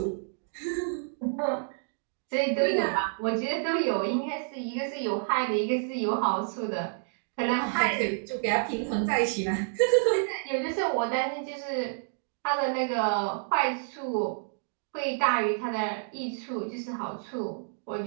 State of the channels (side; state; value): left; silent; digital silence